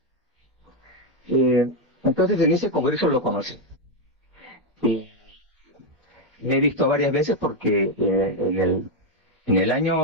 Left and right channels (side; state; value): both; normal; correlation 0.04